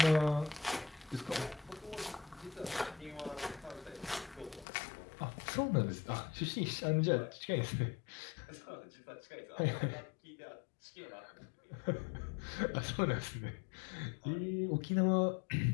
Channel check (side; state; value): right; drops out; at 4.7 s